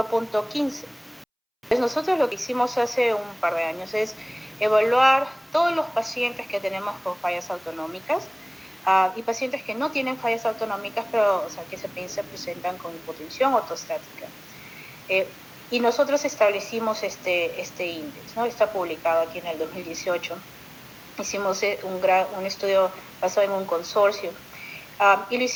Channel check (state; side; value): identical; both; correlation 1.00